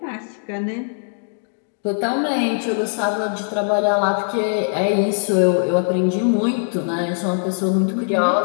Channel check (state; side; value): silent; right; 63 dB below the other